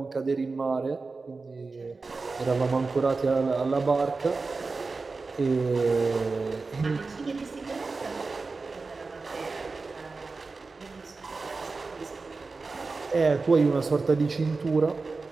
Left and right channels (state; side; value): quieter; left; 4.0 dB